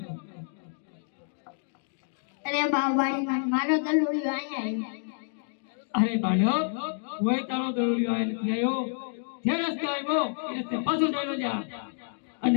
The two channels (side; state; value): right; silent; digital silence